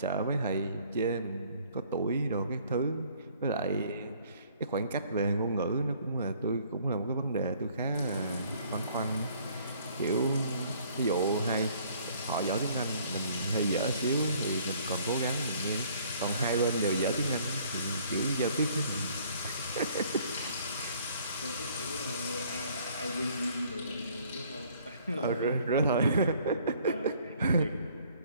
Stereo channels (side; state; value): both; inverted; correlation -0.59